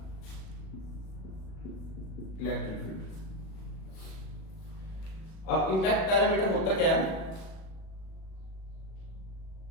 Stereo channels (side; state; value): right; late; 37 ms